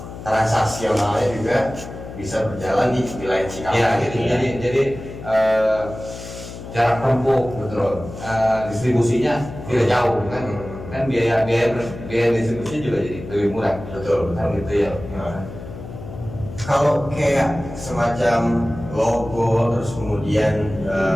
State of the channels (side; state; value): left; noise; hum, 12 dB below the sound